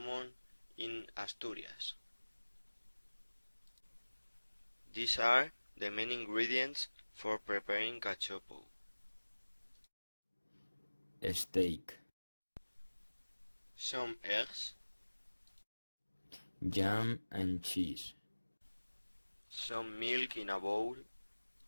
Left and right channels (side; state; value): both; inverted; correlation -1.00